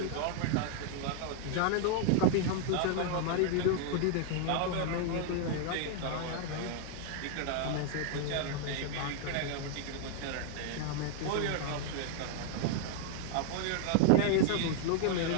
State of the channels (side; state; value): both; different; correlation 0.00